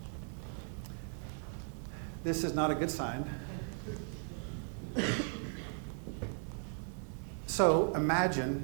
This is not a good sign. So imagine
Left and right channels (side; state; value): left; silent; 53 dB below the other